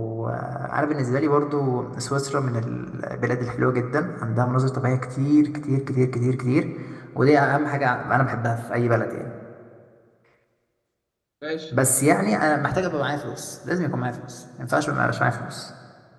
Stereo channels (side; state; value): both; identical; correlation 1.00